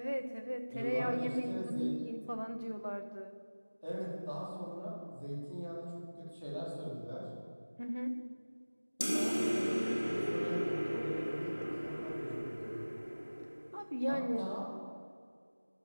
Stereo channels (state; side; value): inverted; both; correlation -1.00